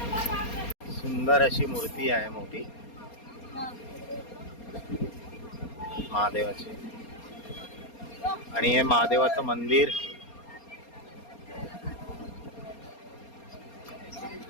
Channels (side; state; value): right; late; 4.3 ms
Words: सुंदर अशी मूर्ती आहे मोठी महादेवाची. आणि हे महादेवाचं मंदिर